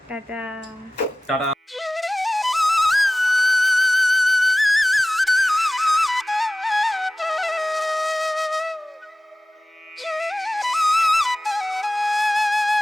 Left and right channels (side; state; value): both; normal; correlation 0.97